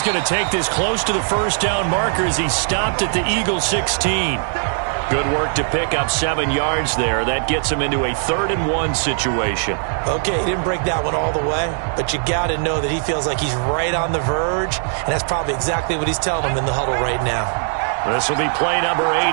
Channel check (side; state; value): left; silent; digital silence